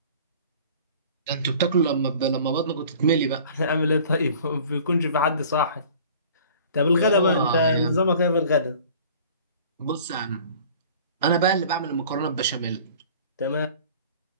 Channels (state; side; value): inverted; both; correlation -0.47